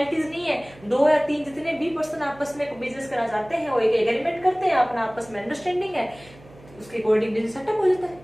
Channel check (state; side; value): noise; right; hum, 23 dB below the sound